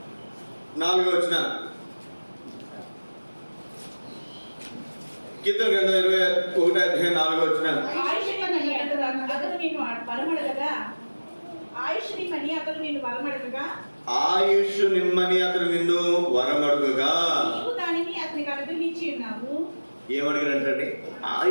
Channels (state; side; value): inverted; both; correlation -1.00